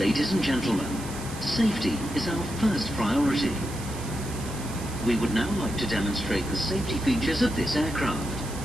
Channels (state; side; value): noise; right; hiss, 14 dB below the sound